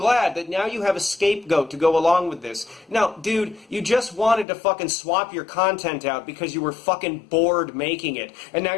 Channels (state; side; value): drops out; right; at 4.5 s